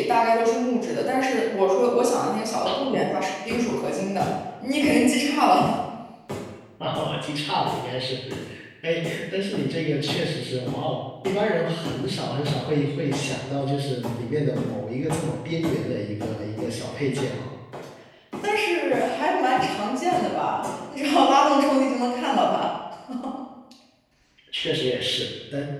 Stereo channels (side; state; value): both; identical; correlation 1.00